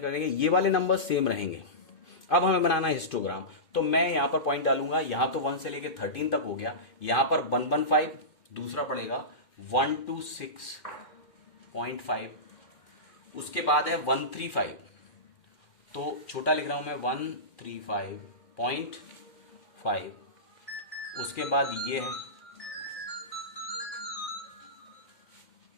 करेंगे, ये वाले नंबर सेम रहेंगे। अब हमें बनाना है हिस्टोग्राम। तो मैं यहां पर पॉइंट डालूंगा, यहां तो 1 से लेके 13 तक हो गया, यहां पर 115, दूसरा पड़ेगा 126.5, उसके बाद है 135, तो छोटा लिख रहा हूं मैं 135.5, उसके बाद ये है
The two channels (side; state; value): right; late; 2.1 ms